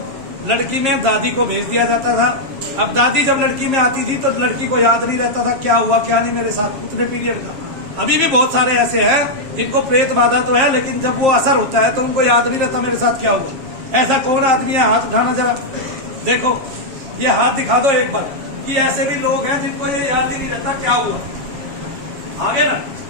लड़की में दादी को भेज दिया जाता था। अब दादी जब लड़की में आती थी तो लड़की को याद नहीं रहता था क्या हुआ क्या नहीं मेरे साथ उतने पीरियड का। अभी भी बहुत सारे ऐसे हैं जिनको प्रेत बाधा तो है, लेकिन जब वो असर होता है तो उनको याद नहीं रहता मेरे साथ क्या हुआ। ऐसा कौन आदमी है, हाथ उठाना जरा, देखो ये हाथ दिखा दो एक बार, कि ऐसे भी लोग हैं जिनको ये याद ही नहीं रहता क्या हुआ। आगे ना,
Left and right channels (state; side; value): late; left; 7.4 ms